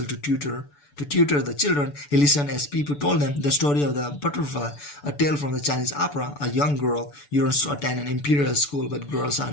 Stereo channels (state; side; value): late; right; 6.9 ms